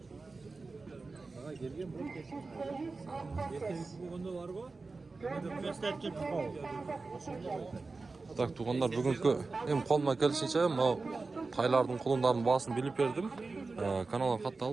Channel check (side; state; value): left; quieter; 3.9 dB